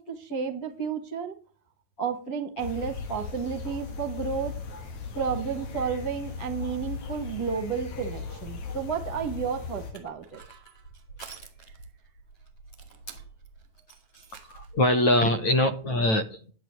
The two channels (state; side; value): late; right; 9.1 ms